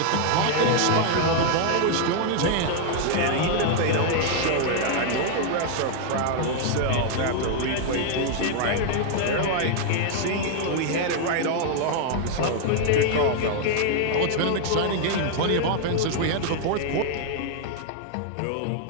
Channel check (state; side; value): different; both; correlation 0.00